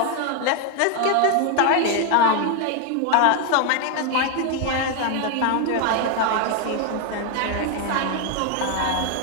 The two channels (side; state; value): both; different; correlation 0.01